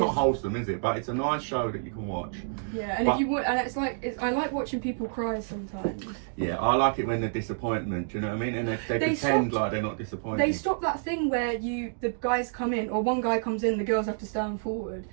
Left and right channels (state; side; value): silent; left; digital silence